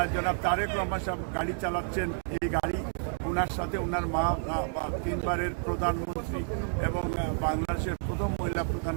জনাব তারেক রহমান সাহেব গাড়ি চালাচ্ছেন। এই গাড়ি ওনার সাথে ওনার মা 3 বারের প্রধানমন্ত্রী এবং বাংলাদেশের প্রথম মহিলা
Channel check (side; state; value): left; silent; 58 dB below the other